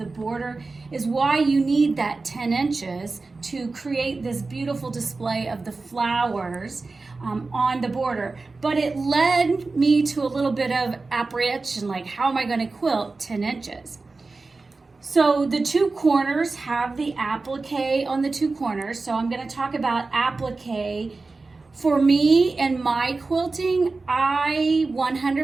border is why you need that 10 inches to create this beautiful display of the flowers on the border. But it led me to a little bit of apprehension, like, how am I going to quilt 10 inches? So the two corners have the applique on the two corners. So I'm going to talk about applique. For me and my quilting, I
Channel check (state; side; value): quieter; left; 3.7 dB